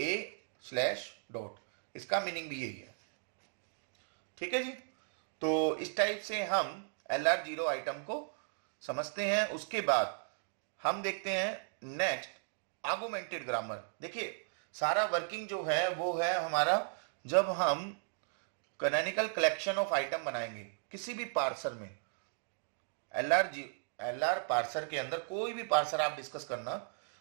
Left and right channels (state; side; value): silent; left; digital silence